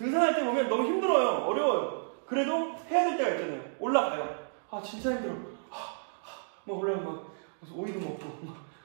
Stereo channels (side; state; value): left; silent; digital silence